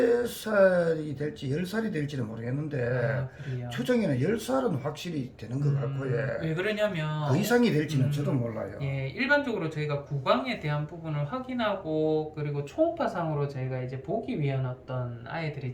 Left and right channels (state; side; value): identical; both; correlation 1.00